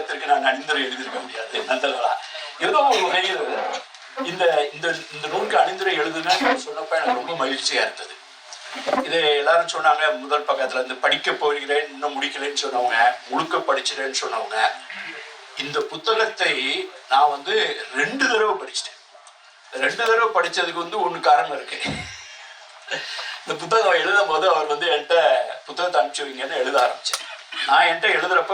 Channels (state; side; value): identical; both; correlation 1.00